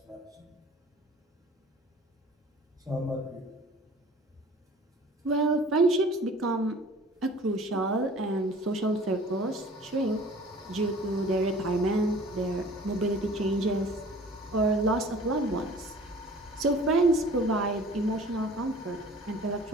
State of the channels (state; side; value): normal; both; correlation 0.47